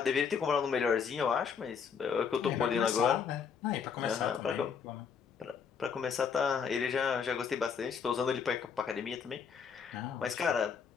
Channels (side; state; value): right; quieter; 6.6 dB